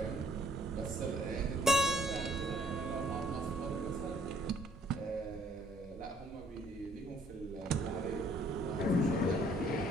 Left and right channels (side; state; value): both; normal; correlation 0.62